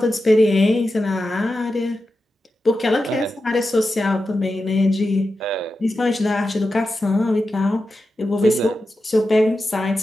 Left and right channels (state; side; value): normal; both; correlation 0.91